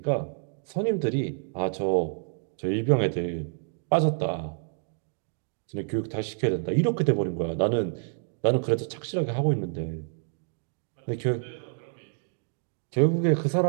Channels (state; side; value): silent; left; digital silence